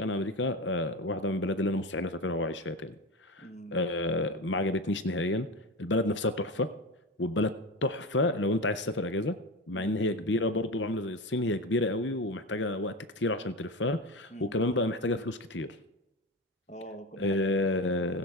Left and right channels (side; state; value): both; normal; correlation 0.22